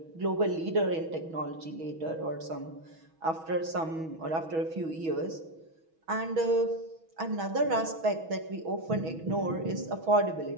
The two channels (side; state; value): left; late; 6.2 ms